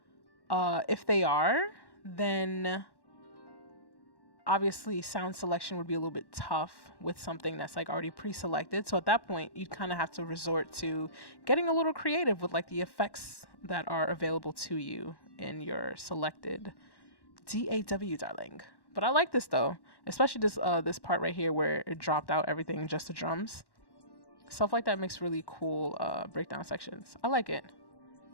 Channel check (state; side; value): late; right; 1.1 ms